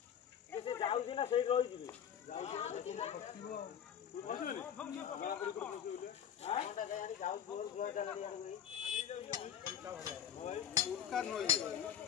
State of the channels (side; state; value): right; quieter; 9.3 dB